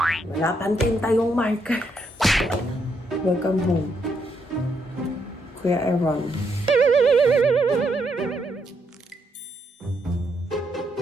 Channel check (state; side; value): normal; both; correlation 0.77